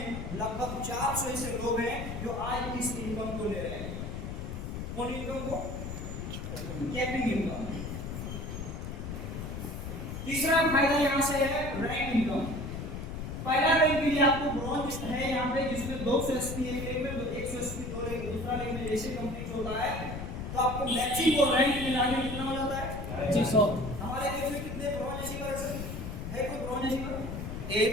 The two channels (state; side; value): noise; left; rumble, 6 dB below the sound